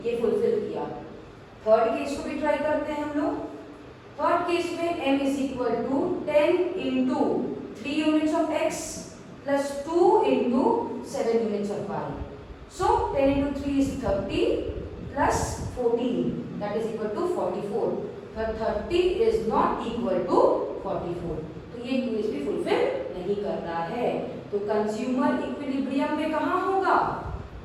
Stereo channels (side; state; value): both; identical; correlation 1.00